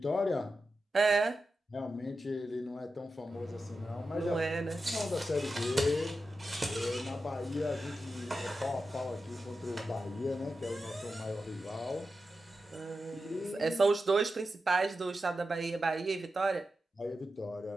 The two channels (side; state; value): both; normal; correlation 0.90